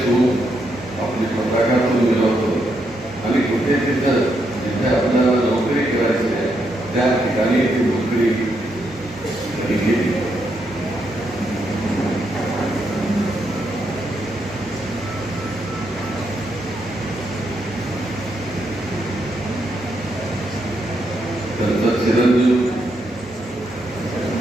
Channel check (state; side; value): normal; both; correlation 0.79